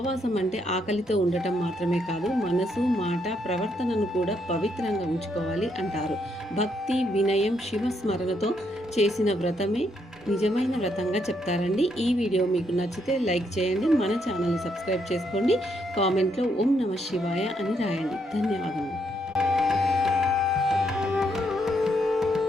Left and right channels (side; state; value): both; normal; correlation 0.75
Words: అంటే ఆకలితో ఉండటం మాత్రమే కాదు, మనసు, మాట, ప్రవర్తనను కూడా పవిత్రంగా ఉంచుకోవాలి అంటారు. భక్తి, వినయం, శివస్మరణతో చేసిన వ్రతమే నిజమైన వ్రతంగా చెప్తారండి. ఈ వీడియో మీకు నచ్చితే లైక్ చేయండి, మన ఛానల్ని సబ్స్క్రైబ్ చేసుకోండి, కామెంట్లో ఓం నమః శివాయ అని రాయండి. ధన్యవాదములు.